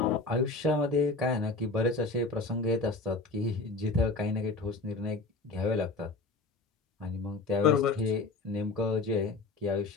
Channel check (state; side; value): quieter; right; 3.6 dB